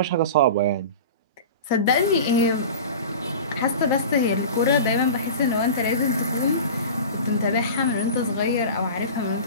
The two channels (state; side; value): inverted; both; correlation -0.33